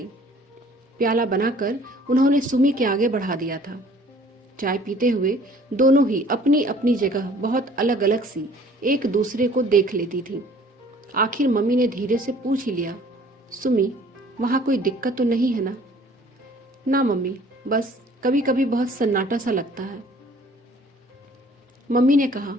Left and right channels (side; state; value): both; normal; correlation 0.54